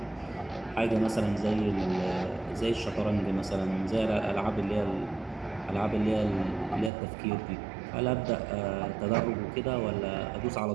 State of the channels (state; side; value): drops out; left; at 6.9 s